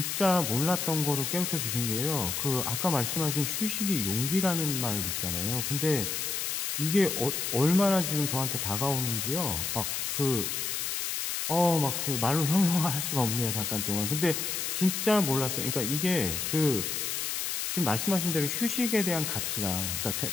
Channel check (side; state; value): left; noise; hiss, 2 dB below the sound